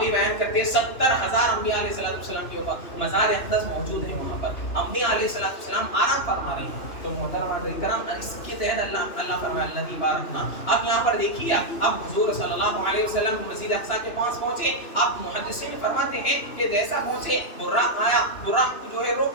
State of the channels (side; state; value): right; late; 2.9 ms